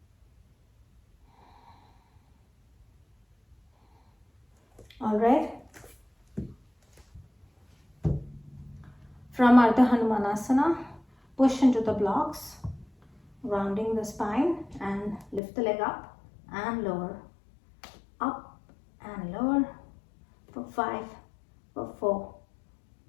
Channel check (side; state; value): right; drops out; at 15.4 s